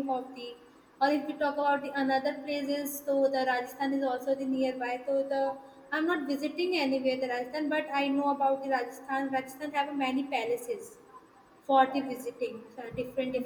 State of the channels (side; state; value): both; identical; correlation 1.00